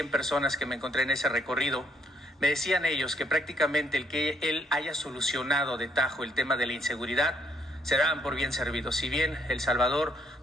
personas que me encontré en ese recorrido, me decían ellos que prácticamente el que él haya solucionado de tajo el tema de la inseguridad se daban por bien servidos. Si bien El Salvador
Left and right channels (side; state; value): both; normal; correlation 0.69